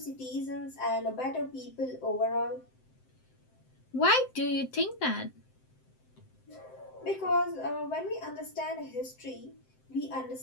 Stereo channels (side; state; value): right; late; 7.8 ms